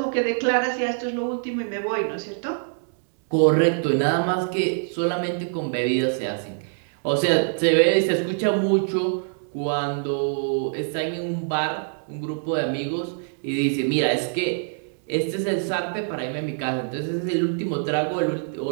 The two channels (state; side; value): silent; left; digital silence